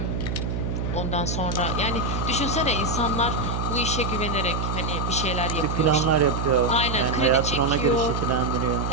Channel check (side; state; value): right; noise; hum, 1 dB below the sound